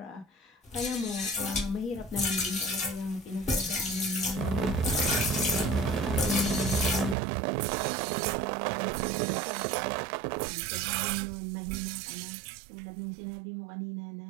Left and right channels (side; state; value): left; drops out; at 7.2 s